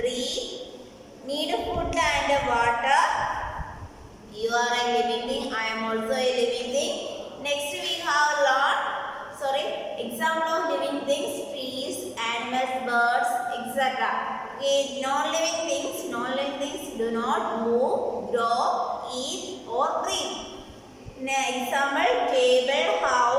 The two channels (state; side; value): identical; both; correlation 1.00